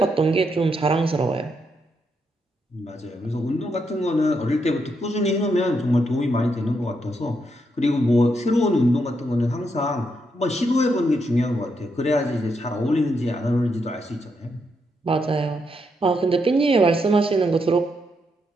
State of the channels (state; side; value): normal; both; correlation 0.80